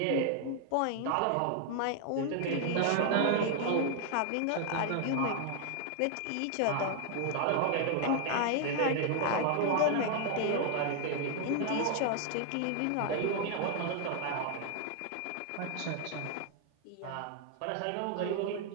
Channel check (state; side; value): different; both; correlation 0.00